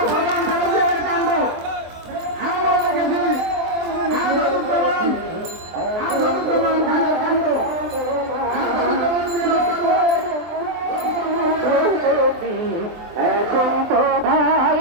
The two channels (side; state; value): left; late; 23 ms